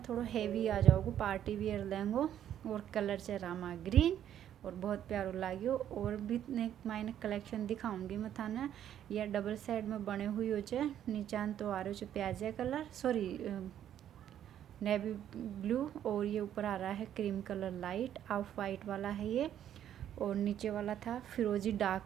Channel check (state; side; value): quieter; left; 10.5 dB